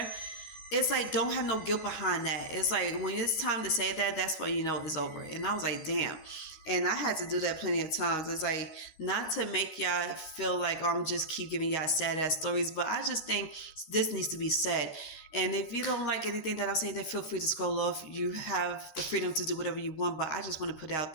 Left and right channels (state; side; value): late; right; 13 ms